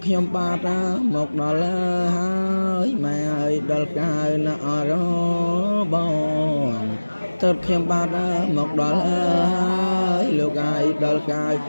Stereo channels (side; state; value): both; inverted; correlation -1.00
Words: ខ្ញុំបាទមកដល់ហើយម៉ែអើយដល់កាយណាអរបងតើខ្ញុំបាទមកដល់ហើយលោកអាយដល់កាយ